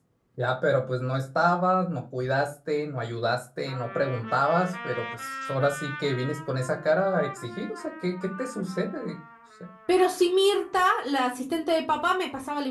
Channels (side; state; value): both; identical; correlation 1.00